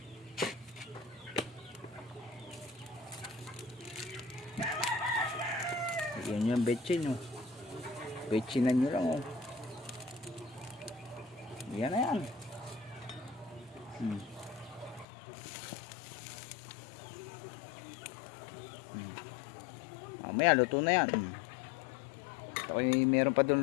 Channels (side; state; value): right; drops out; at 15.1 s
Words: Yan yung betchin, oh. Betchinan nyo lang, oh. Yan na yan. Mamaya luto na yan. Okay, meron pa